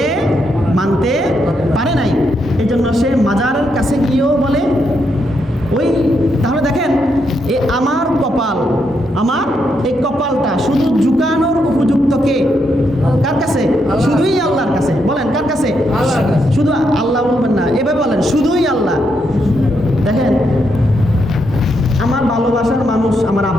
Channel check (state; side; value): normal; both; correlation 0.79